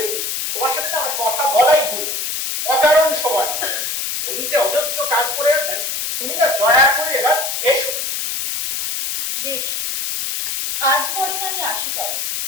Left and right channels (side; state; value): left; noise; hiss, 2 dB below the sound